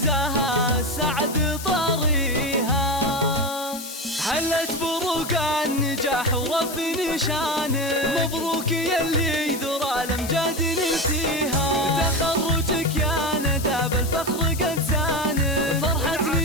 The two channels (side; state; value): left; noise; hiss, 10 dB below the sound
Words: السعد طريها. هلت برقان نجاح ورفع نشانك، مبروك يلي ذرى الأمجاد نلتيها، تخرجك يا ندى بالفخر قد زانك، فرحة